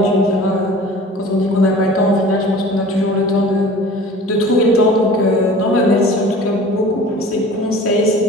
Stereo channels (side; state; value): both; normal; correlation 0.43